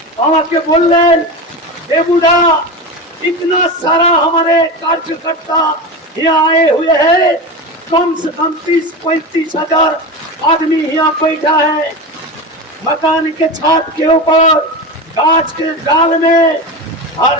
আমাকে বললেন, देबूदा इतना सारा हमारे कार्यकर्ता यहाँ आए हुए हैं, कम से कम 30-35 हजार आदमी यहाँ बैठा है, मकान के छत के ऊपर, गाछ के डाल में, हर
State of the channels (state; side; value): normal; both; correlation 0.24